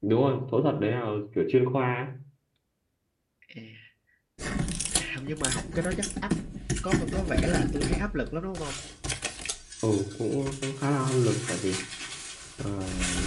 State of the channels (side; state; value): both; identical; correlation 1.00